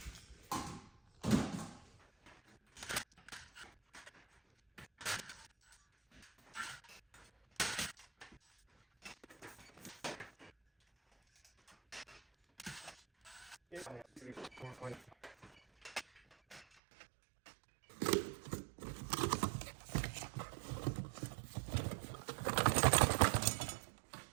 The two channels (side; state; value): left; drops out; at 16.7 s